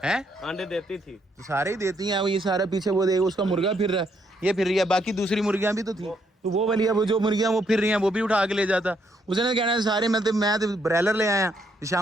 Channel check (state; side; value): normal; both; correlation 0.73